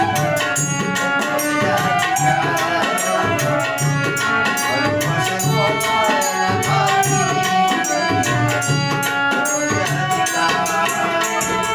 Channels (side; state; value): both; identical; correlation 1.00